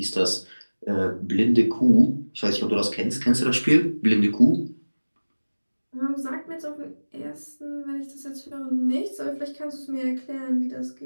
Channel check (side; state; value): both; inverted; correlation -1.00